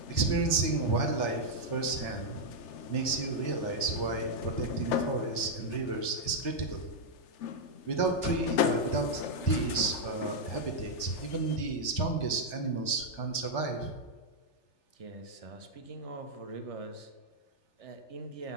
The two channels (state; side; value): late; right; 3.4 ms